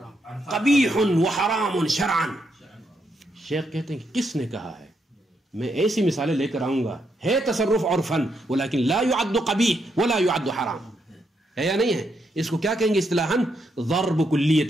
قبیح وحرام شرعا. شیخ کہتے ہیں کہ کس نے کہا ہے؟ میں ایسی مثالیں لے کر آؤں گا، ہے تصرف عرفن ولیکن لا يعد قبیح ولا يعد حرام، ہے یا نہیں ہے؟ اس کو کیا کہیں گے اصطلاحاً؟ ضرب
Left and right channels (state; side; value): normal; both; correlation 0.79